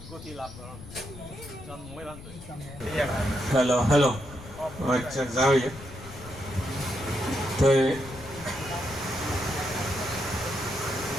গতি লাভ কৰা জন্মই বান্ধ হেল্ল' আচ্ছা যাও তো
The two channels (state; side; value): noise; left; rumble, 15 dB below the sound